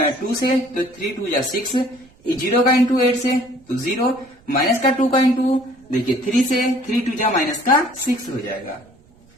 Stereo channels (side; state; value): right; noise; rumble, 29 dB below the sound